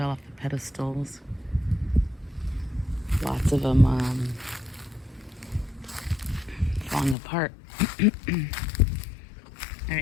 off the pedestals. Lots of them falling apart. All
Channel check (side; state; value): right; drops out; at 7.2 s